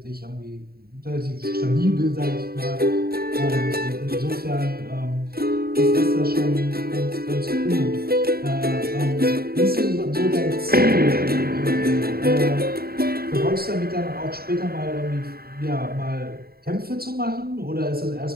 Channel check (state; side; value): late; left; 0.45 ms